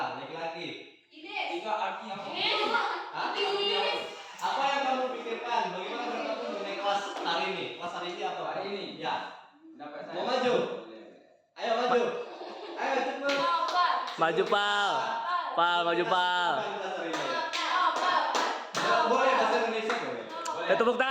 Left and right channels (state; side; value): identical; both; correlation 1.00